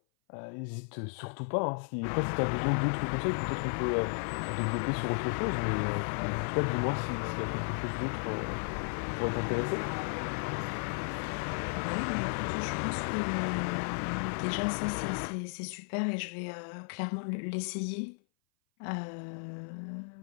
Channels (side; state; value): right; silent; 55 dB below the other